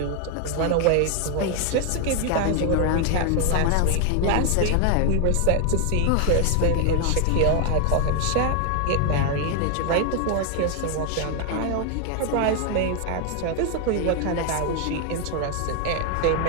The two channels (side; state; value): both; different; correlation 0.00